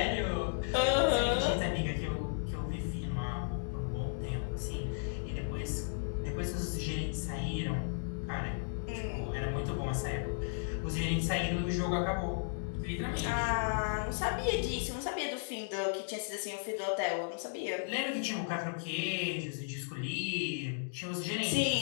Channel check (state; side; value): silent; right; digital silence